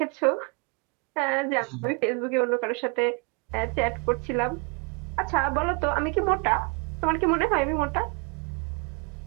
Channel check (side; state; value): left; quieter; 32.9 dB